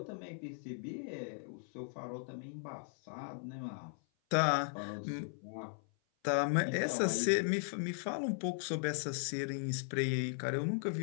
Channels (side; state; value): right; silent; 53 dB below the other